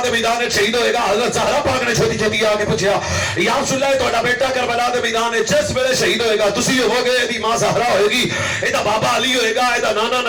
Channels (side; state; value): both; identical; correlation 1.00